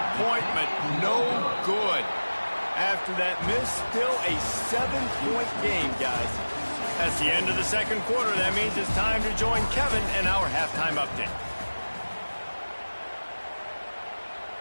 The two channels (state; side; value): inverted; both; correlation -1.00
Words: No good. After that miss, still a 7-point game, guys. That's the end of the 2nd quarter. That means it's time to join Kevin and our halftime update.